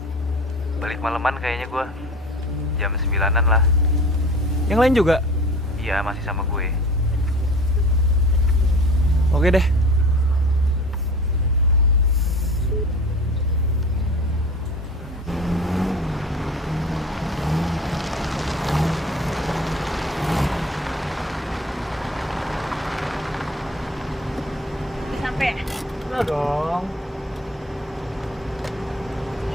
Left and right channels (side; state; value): both; normal; correlation 0.41